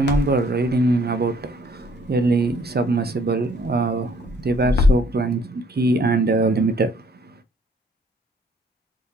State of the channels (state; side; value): normal; both; correlation 0.62